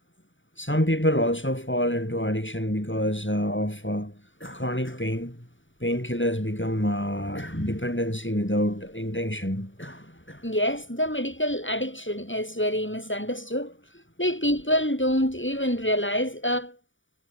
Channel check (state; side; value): late; right; 0.56 ms